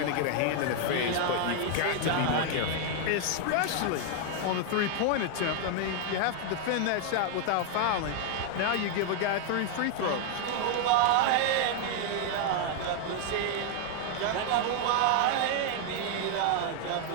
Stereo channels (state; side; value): different; both; correlation 0.00